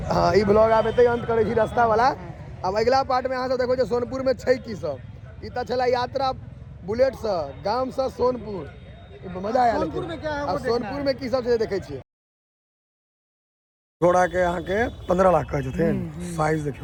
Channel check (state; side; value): identical; both; correlation 1.00